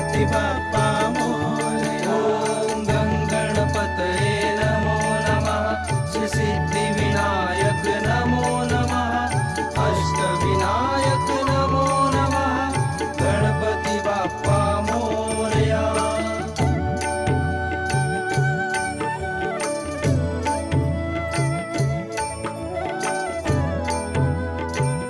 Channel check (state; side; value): identical; both; correlation 1.00